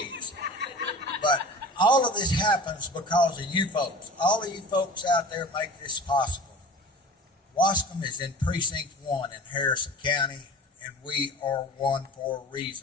But all of this happens because of you folks. All of you folks out there make this possible. Waskom is in Precinct 1 in Harrison County, and we are one for a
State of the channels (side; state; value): both; normal; correlation 0.39